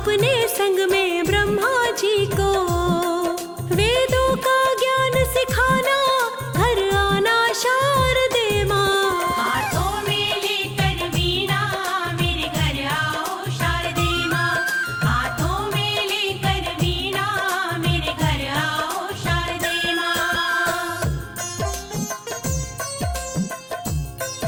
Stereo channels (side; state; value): both; identical; correlation 1.00